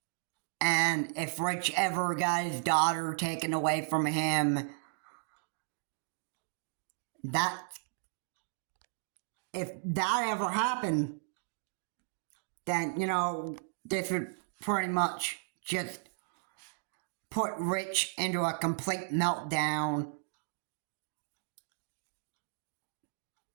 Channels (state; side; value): silent; left; digital silence